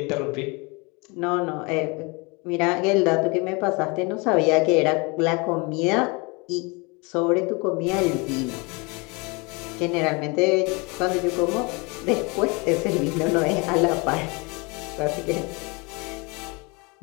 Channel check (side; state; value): right; quieter; 28.6 dB